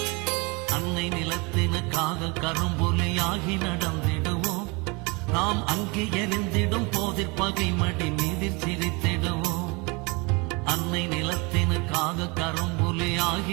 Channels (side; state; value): left; quieter; 28.1 dB